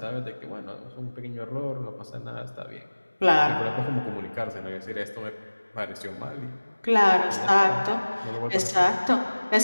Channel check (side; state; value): both; inverted; correlation -1.00